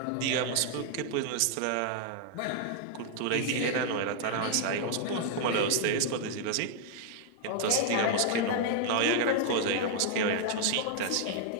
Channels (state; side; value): different; both; correlation 0.00